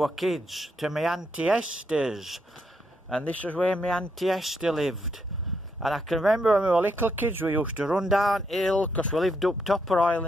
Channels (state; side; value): normal; both; correlation 0.78